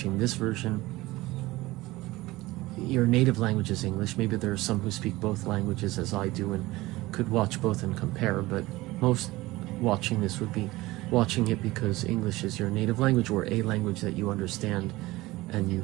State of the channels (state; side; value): quieter; left; 19.2 dB